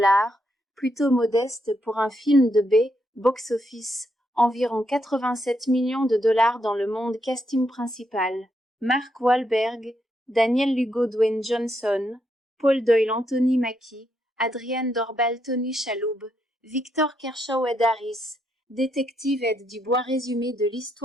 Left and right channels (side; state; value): both; normal; correlation 0.78